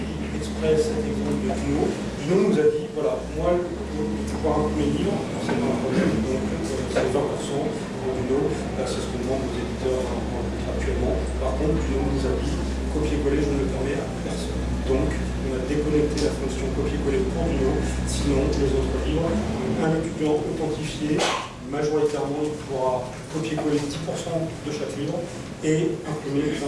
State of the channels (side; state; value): both; identical; correlation 1.00